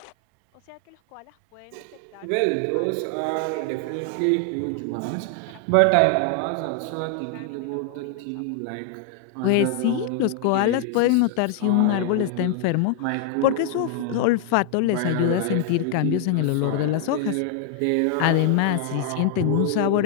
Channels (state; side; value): different; both; correlation 0.00